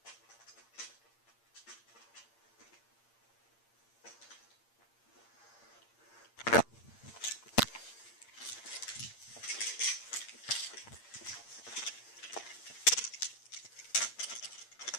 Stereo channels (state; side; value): late; right; 8.7 ms